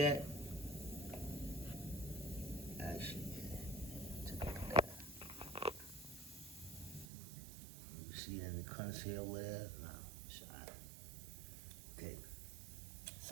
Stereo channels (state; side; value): drops out; left; at 7.1 s